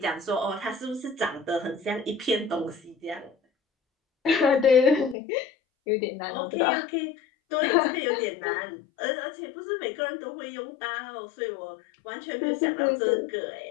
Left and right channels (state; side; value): drops out; right; at 5.2 s